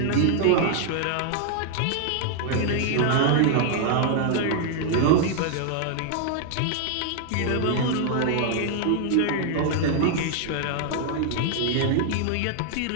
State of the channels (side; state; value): both; different; correlation 0.00